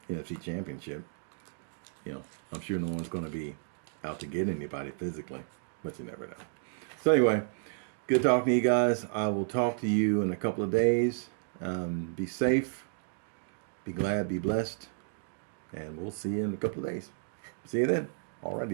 NFC Championship. I'm sure no one's going to be out to get anybody physically, but you never know. So anyway, good talking to you guys. I will talk to you in a couple of days. Be safe, be glad, be blessed, and we'll see you in a couple of days. See you then.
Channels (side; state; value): left; silent; digital silence